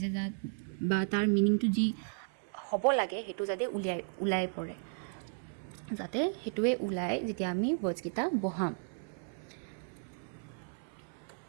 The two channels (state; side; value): silent; left; 55 dB below the other